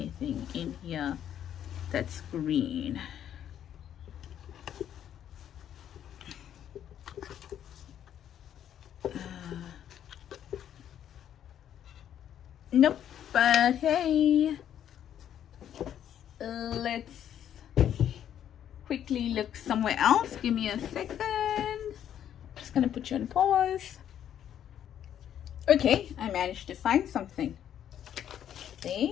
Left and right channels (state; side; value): quieter; right; 10.1 dB